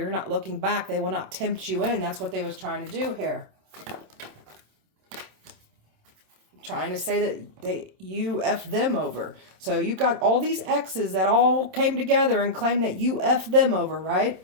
not looking back. They will not tempt you in. That's what they was trying to do here. Trying to say that you F them over. So you got all these exes that all came together and claimed that you F them over,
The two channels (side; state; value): left; late; 27 ms